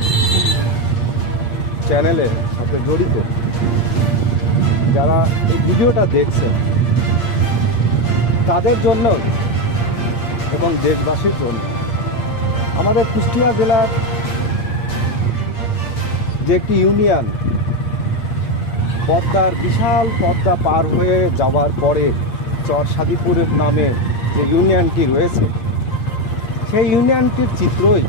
চ্যানেলের সাথে জড়িত, যারা এই ভিডিওটা দেখছেন, তাদের জন্য এবং দেশবাসীর জন্য আমাদের কুষ্টিয়া জেলার যে একটি ইউনিয়ন পদ্মার বিশাল পদ্মা পার হয়ে যাওয়ার পরে চরসাদিপুরের নামে যে ইউনিয়নটি রয়েছে, সেই ইউনিয়নটির চিত্রই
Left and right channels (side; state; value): right; late; 8.5 ms